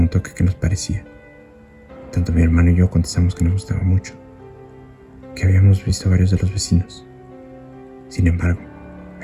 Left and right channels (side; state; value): both; identical; correlation 1.00